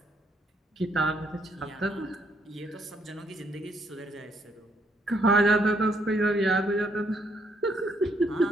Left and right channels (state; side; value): normal; both; correlation 0.71